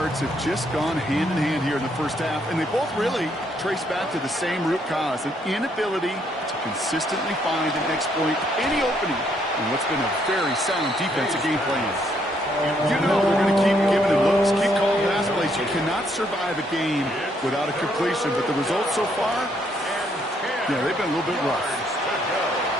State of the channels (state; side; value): normal; both; correlation 0.71